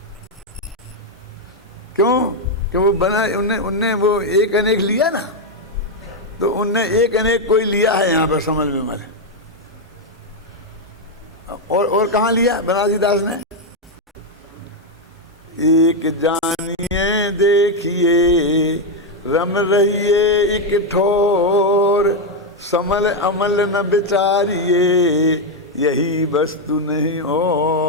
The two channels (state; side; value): normal; both; correlation 0.03